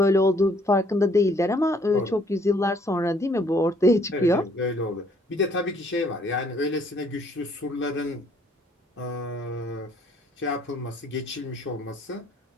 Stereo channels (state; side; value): normal; both; correlation 0.63